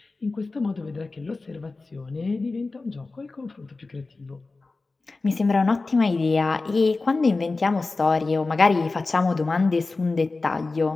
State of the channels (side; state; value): right; quieter; 3.6 dB